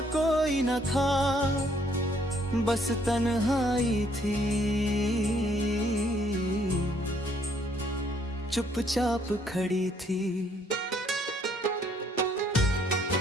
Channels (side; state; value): both; normal; correlation 0.66